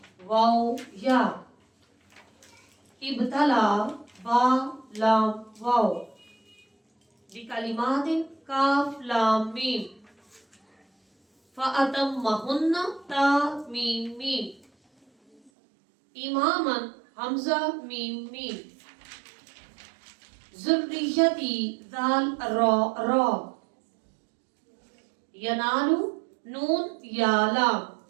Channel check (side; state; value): left; drops out; at 15.5 s